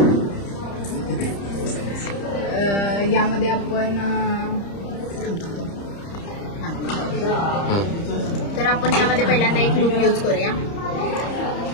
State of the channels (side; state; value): right; late; 30 ms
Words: यामध्ये आपण तर आपण यामध्ये पहिल्यांदा एक लूप यूज करूया.